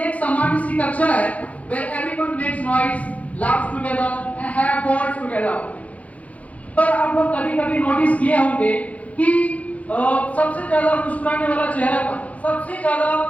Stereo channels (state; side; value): late; right; 0.068 ms